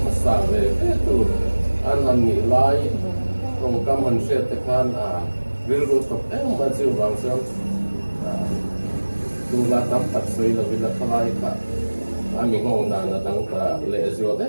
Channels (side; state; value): both; inverted; correlation -1.00